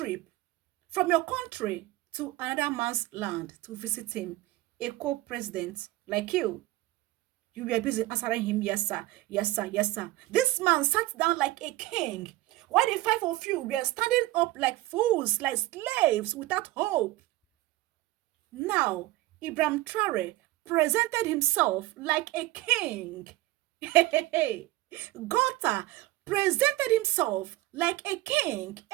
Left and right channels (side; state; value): left; quieter; 17.8 dB